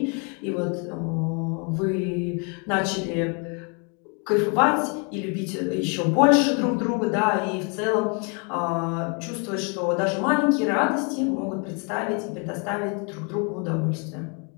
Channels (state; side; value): quieter; right; 35.9 dB